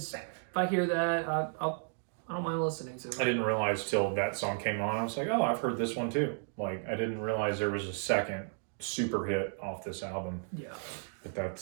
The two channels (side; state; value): left; silent; 55 dB below the other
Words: if I hear that, I don't mind listening to it. I didn't realize till that song came on. I was like, oh, I've heard this one too. Like, I didn't realize there was a second super hit off this album. Yeah. But